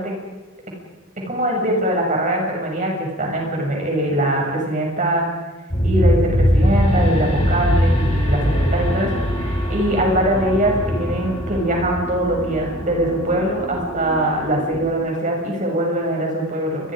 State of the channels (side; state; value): both; normal; correlation 0.45